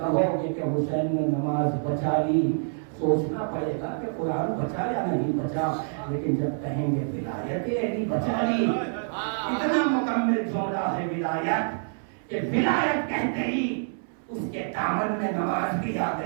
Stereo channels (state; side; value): silent; left; 60 dB below the other